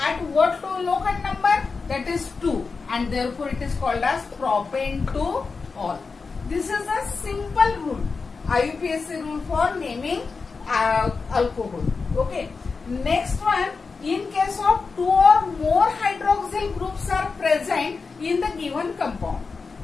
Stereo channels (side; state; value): right; quieter; 4.6 dB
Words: what locant number? That is 2, and therefore it is called as propane 2 all. This is a simple rule, IUPAC rule for naming alcohol. Okay, next one, in case of 2 or more hydroxyl groups are present in the given compound.